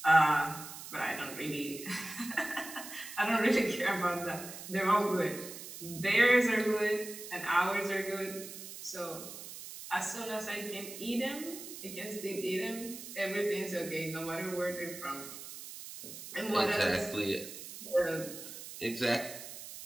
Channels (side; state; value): right; noise; hiss, 12 dB below the sound